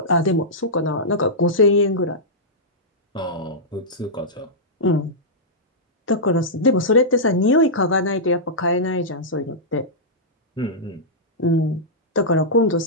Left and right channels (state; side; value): normal; both; correlation -0.12